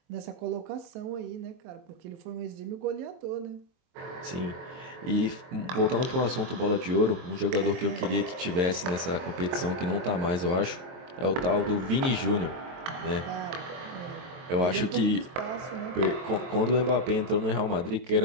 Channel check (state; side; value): late; left; 22 ms